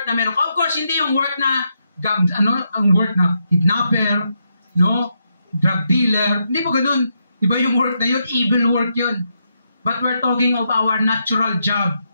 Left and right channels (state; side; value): inverted; both; correlation -0.81